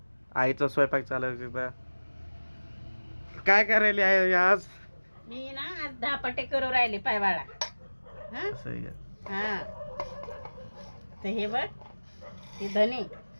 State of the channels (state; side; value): inverted; both; correlation -1.00